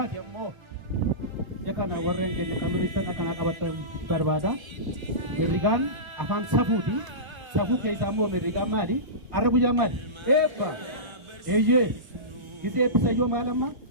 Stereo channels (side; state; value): left; late; 1.3 ms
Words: ammoo. Yakana warreen keenya kan mirriisa kana qabatan barbaada. Mirrigaan afaan safuuti. Safuu keessaa immoo mirrigaan maali? Har'a guyyaa maali? Eebba. Eeyyee. Gita eebbisa yoo maal amma?